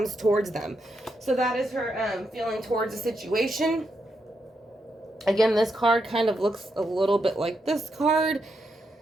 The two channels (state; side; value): normal; both; correlation 0.82